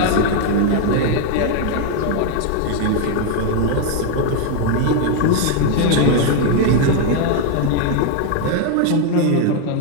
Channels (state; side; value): different; both; correlation 0.01